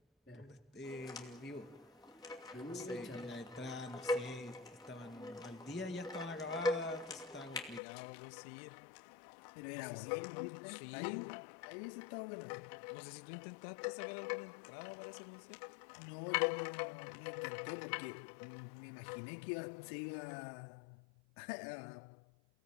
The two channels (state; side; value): drops out; right; at 7.8 s